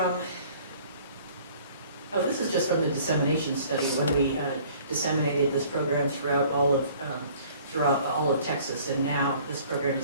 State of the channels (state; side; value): inverted; both; correlation -0.53